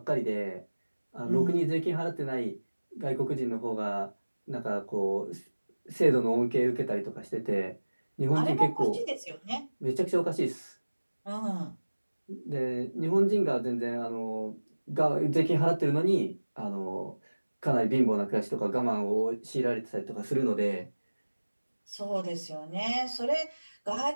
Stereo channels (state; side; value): inverted; both; correlation -1.00